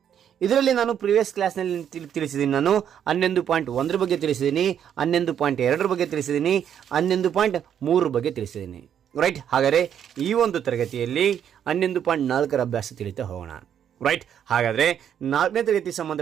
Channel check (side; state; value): left; quieter; 9.1 dB